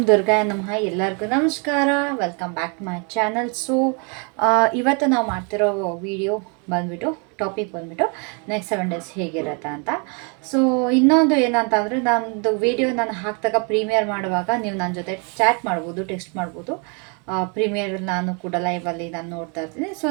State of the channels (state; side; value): quieter; left; 35.6 dB